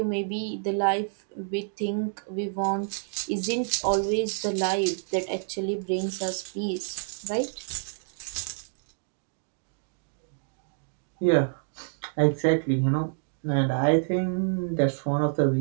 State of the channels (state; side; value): silent; left; digital silence